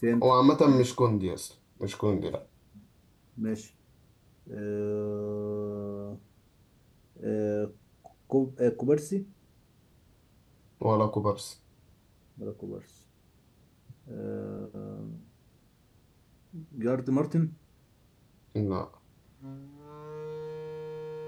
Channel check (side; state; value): both; identical; correlation 1.00